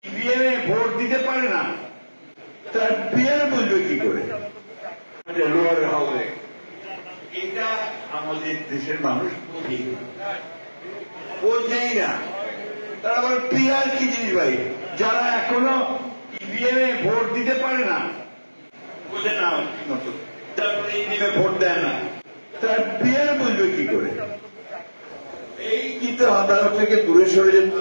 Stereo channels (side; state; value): both; inverted; correlation -1.00